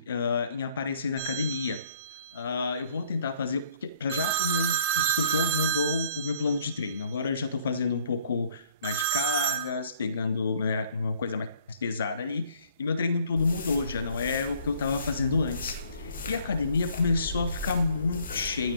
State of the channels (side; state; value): both; inverted; correlation -0.60